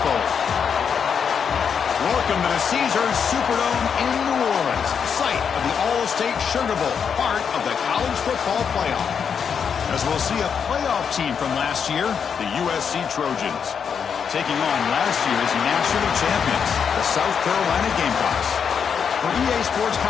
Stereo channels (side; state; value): right; quieter; 6.9 dB